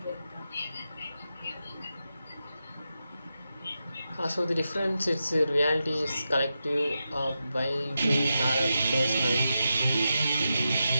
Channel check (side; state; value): both; inverted; correlation -0.89